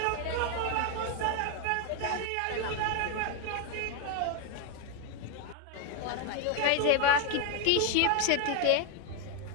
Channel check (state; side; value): different; both; correlation 0.01